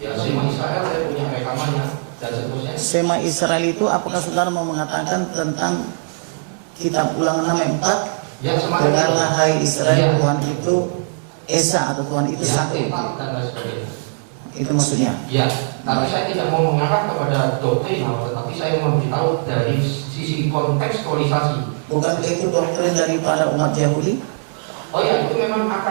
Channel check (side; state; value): left; silent; 59 dB below the other